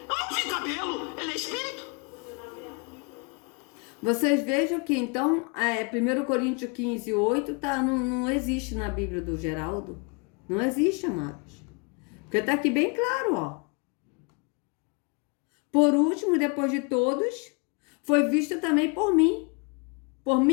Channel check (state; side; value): quieter; right; 32.6 dB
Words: não vi cabelo, ele é espírito. Vocês vejam que então, 1 Coríntios 15, 8 não existe na Bíblia do Geraldo. Não existe, amados. Porque está aqui bem claro, ó. Por último, depois de todos, foi visto também por mim. Por